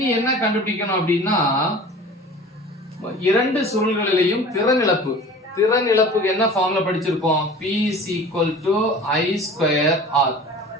என்ன கண்டுபிடிக்கணும் அப்படின்னா இரண்டு சுருள்களிலேயும் திறன் இழப்பு. திறன் இழப்புக்கு என்ன ஃபார்முலா படிச்சிருப்போம், P is equal to I square R.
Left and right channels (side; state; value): both; normal; correlation 0.41